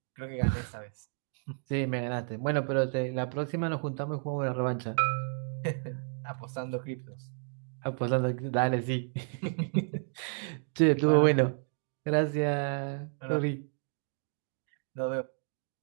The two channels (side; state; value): left; silent; 57 dB below the other